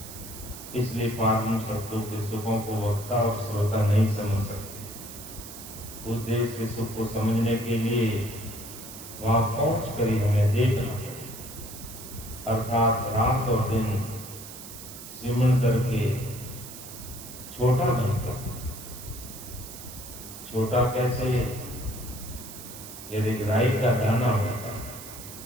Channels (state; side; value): noise; right; hiss, 13 dB below the sound